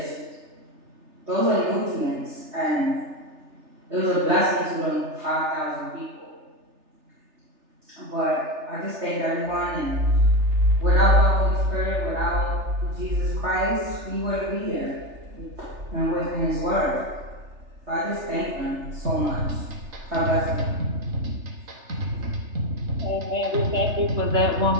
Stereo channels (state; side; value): late; left; 3.3 ms